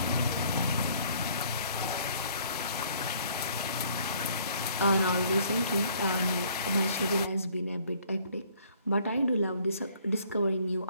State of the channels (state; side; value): inverted; both; correlation -0.61